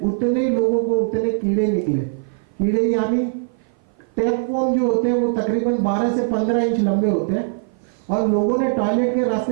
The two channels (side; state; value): left; silent; 56 dB below the other